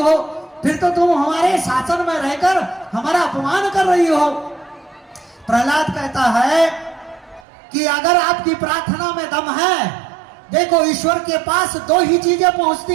फिर तो तुम हमारे शासन में रहकर हमारा अपमान कर रही हो। प्रहलाद कहता है कि अगर आपकी प्रार्थना में दम है, देखो ईश्वर के पास दो ही चीजें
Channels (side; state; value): left; drops out; at 7.4 s